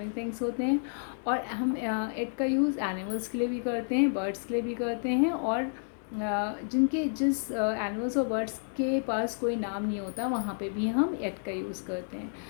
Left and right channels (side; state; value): right; silent; digital silence